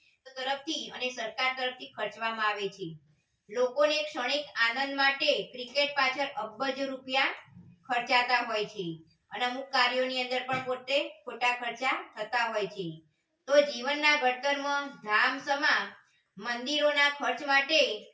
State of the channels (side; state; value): both; identical; correlation 1.00